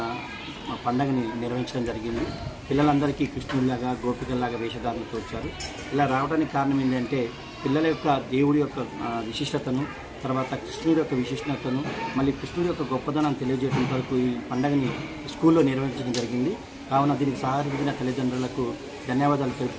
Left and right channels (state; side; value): identical; both; correlation 1.00